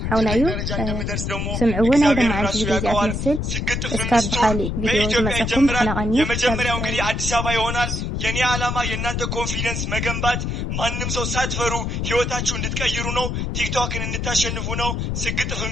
حونايو سمعونا دم عن فيديو زي أتمثل اسكاب بحالي فيديو مساكم بحنا غني የመጀመሪያው እንግዲህ አዲስ አበባ ይሆናል። የኔ ዓላማ የእናንተ ኮንፊደንስ መገንባት፣ ማንም ሰው ሳትፈሩ ህይወታችሁ እንድትቀይሩ ነው። ቲክቶክን እንድታሸንፉ ነው። ስግጥፍ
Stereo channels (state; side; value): noise; left; rumble, 2 dB below the sound